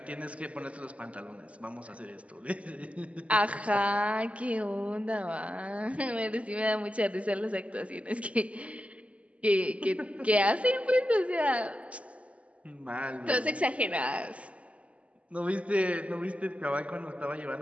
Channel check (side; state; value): left; late; 0.064 ms